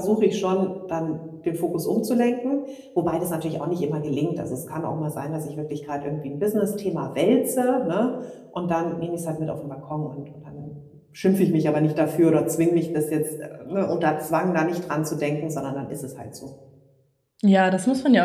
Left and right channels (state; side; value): identical; both; correlation 1.00